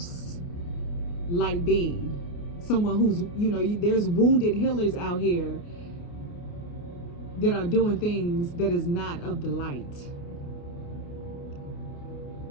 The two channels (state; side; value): late; right; 29 ms